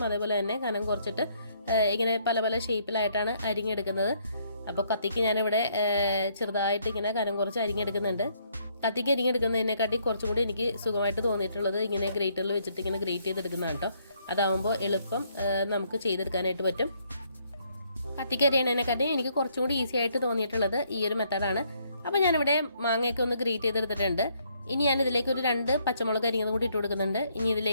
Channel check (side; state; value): both; inverted; correlation -0.70